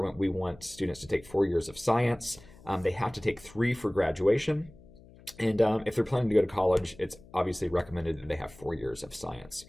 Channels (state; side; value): noise; left; hum, 22 dB below the sound